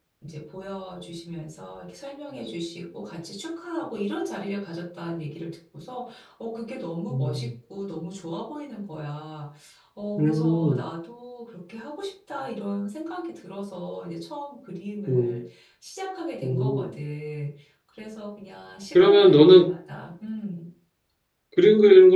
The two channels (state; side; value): identical; both; correlation 1.00